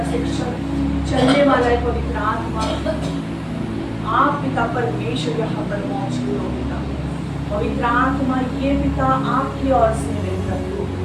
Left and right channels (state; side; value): identical; both; correlation 1.00